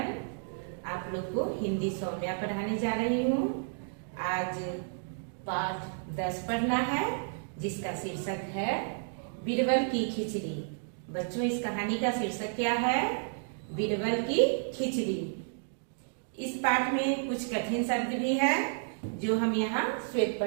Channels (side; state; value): left; silent; digital silence